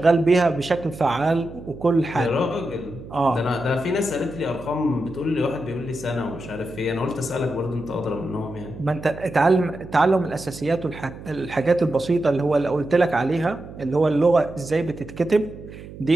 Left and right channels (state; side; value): noise; right; hum, 15 dB below the sound